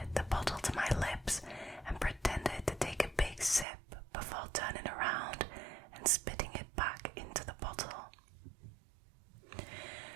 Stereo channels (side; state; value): left; drops out; at 3.7 s